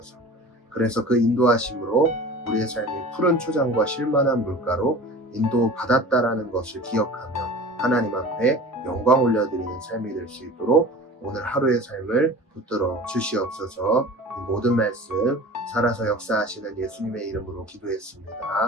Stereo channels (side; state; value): both; normal; correlation 0.38